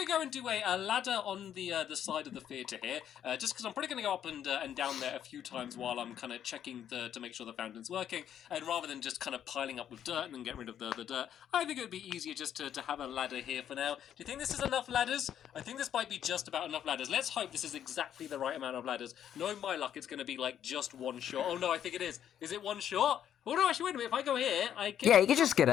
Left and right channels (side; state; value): right; quieter; 9.9 dB